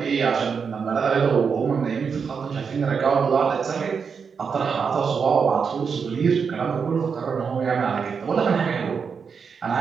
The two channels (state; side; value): quieter; left; 6.0 dB